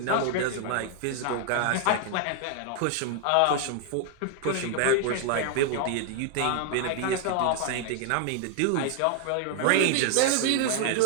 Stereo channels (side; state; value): both; different; correlation 0.00